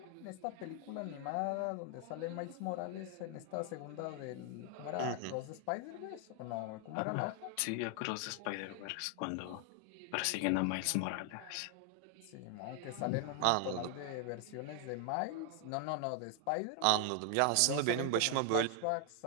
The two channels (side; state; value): both; different; correlation 0.00